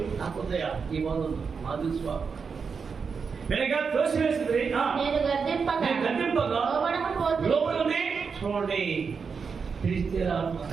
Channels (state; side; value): quieter; left; 5.6 dB